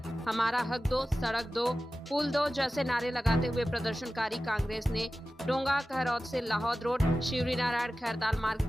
हमारा हक दो, सड़क दो, पुल दो जैसे नारे लगाते हुए प्रदर्शनकारी कांग्रेस ने डोंगा कहरौद से लाहौद रोड, शिवरी नारायण खैरताल मार्ग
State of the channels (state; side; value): normal; both; correlation 0.95